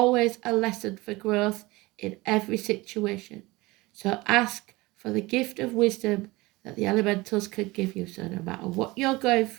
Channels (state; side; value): quieter; left; 21.6 dB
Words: a lesson for growth in every situation. So ask for the gift of wisdom that the elementals can give you. So no matter what you're going